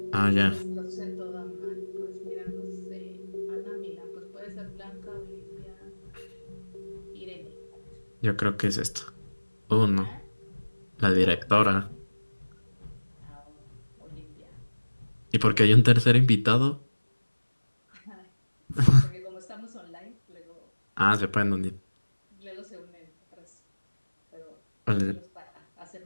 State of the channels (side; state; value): both; inverted; correlation -1.00